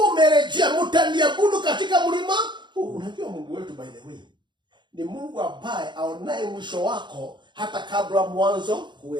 umerejea, mtaniabudu katika mlima huu. Unajua Mungu wetu by the way ni Mungu ambaye aonaye mwisho wako hata kabla mwanzo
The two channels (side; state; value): left; late; 0.22 ms